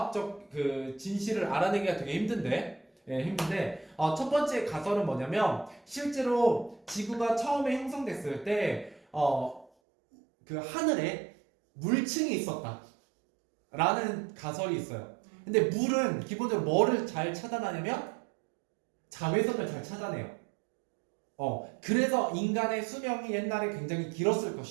그 진실을 알아내기가 되게 힘든데 첫 번째 가설은 뭐냐면 실제로 지구가 처음에 형성됐을 때 그 하늘에 물층이 있었다 라는 가설이 있어요. 근데 물은 기본적으로 뭐를 잘 차단하냐면 자외선을 잘 차단해요. 그래서 인간의 수명이 옛날에 굉장히 길었을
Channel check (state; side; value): drops out; left; at 9.7 s